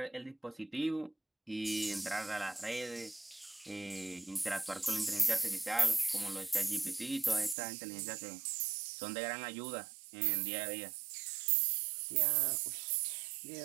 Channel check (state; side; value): drops out; left; at 7.6 s